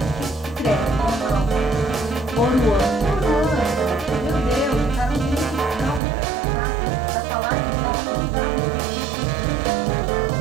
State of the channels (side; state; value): left; drops out; at 6.0 s